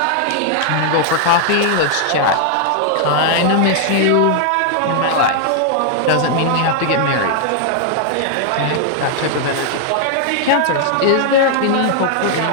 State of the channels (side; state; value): both; different; correlation -0.01